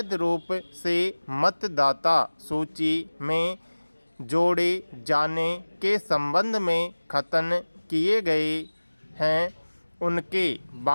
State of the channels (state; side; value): inverted; both; correlation -1.00